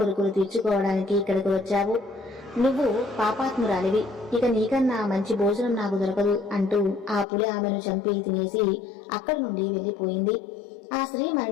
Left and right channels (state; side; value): drops out; right; at 7.2 s